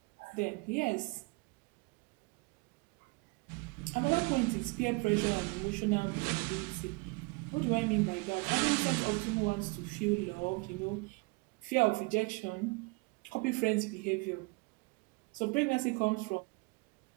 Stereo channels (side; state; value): left; quieter; 27.5 dB